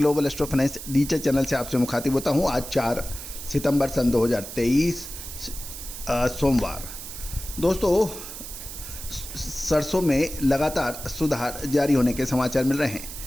astro finance digital channel से आपसे मुखातिब होता हूं। आज 4 सितंबर सन 2023 सोमवार। दोस्तों सरसों में लगातार सुधार जारी होने के समाचार मिल रहे हैं।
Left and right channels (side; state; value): right; noise; hiss, 10 dB below the sound